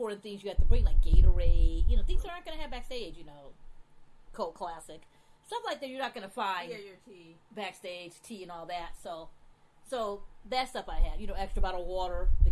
things you have to bring, like Gatorade, things that aren't going to have backstage, Coke Classic. Stuff like that you're not going to find your tea. Backstage, tea and all that. So that stuff I had, extra bottle of water,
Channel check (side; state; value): both; identical; correlation 1.00